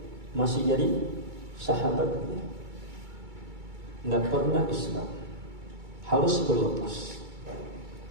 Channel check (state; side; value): late; left; 2.3 ms